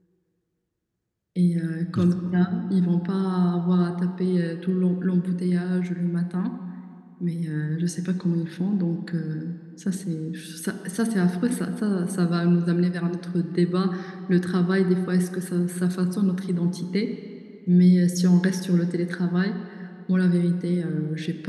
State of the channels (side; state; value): both; identical; correlation 1.00